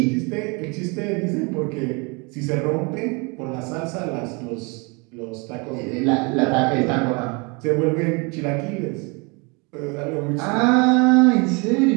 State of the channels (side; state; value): left; quieter; 30.2 dB